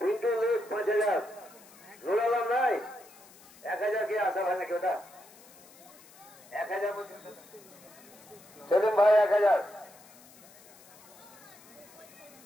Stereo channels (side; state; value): left; noise; hiss, 23 dB below the sound